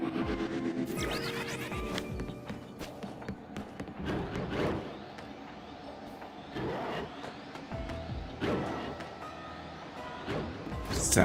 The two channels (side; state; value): both; identical; correlation 1.00